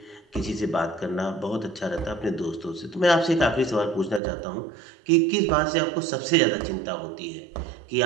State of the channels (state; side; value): drops out; left; at 4.2 s